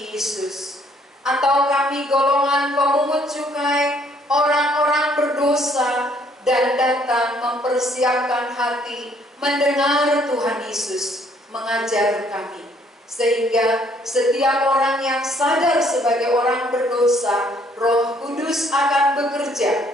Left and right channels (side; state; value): both; normal; correlation 0.64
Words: Yesus? Atau kami golongan pemungut cukai, orang-orang berdosa, dan datang mempersiapkan hati mendengar Tuhan Yesus mengajar kami? Sehingga setiap orang yang sadar sebagai orang berdosa, Roh Kudus akan